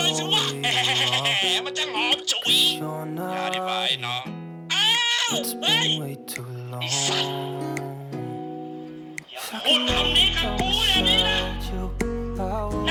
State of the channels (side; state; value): both; identical; correlation 1.00